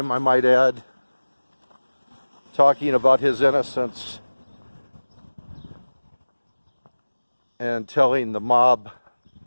I might add, talking about his innocence and telling the mob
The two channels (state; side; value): inverted; both; correlation -1.00